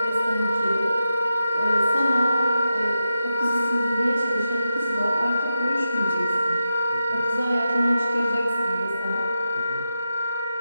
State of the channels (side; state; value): both; inverted; correlation -0.89